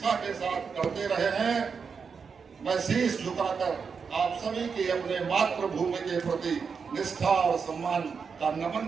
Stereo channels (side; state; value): left; quieter; 5.8 dB